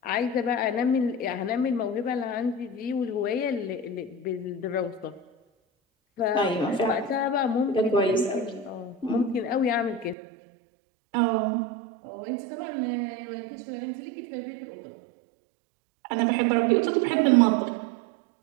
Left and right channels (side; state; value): left; drops out; at 10.2 s